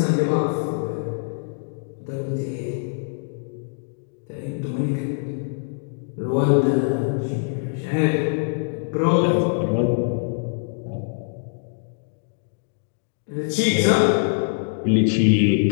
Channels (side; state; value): right; silent; digital silence